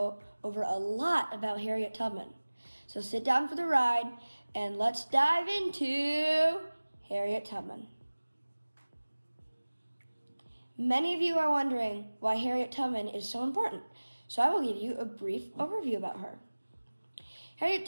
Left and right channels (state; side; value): inverted; both; correlation -1.00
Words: over a lot about Harriet Tubman. So sit down for the ride and let's dive into Harriet Tubman. Many of you are wondering why Harriet Tubman is so important, so I will give you a brief overview about her. Harriet